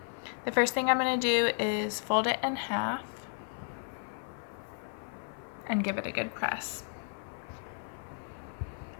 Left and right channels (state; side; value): silent; right; 55 dB below the other